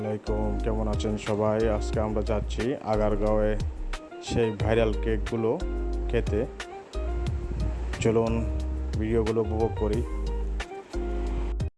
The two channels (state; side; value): identical; both; correlation 1.00